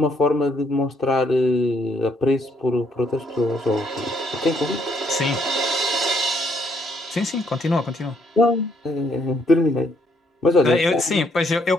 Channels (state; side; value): normal; both; correlation 0.70